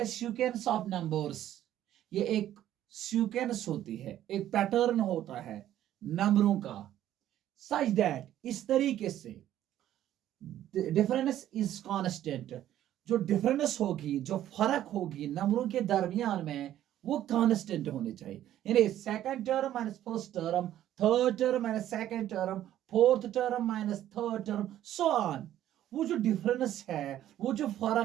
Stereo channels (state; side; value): quieter; left; 12.2 dB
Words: sequence of numbers. ये एक सीक्वेंस होती है, एक पैटर्न होता है नंबरों का, सच दैट इस तरीके से डिफरेंस इज कांस्टेंट। जो डिफरेंस होगी, जो फर्क होगी नंबरों के दरमियान में, वो कांस्टेंट होने चाहिए। यानी second term minus first term, third term minus second term, fourth term minus third term, so on. वो जो डिफरेंस है, वो जो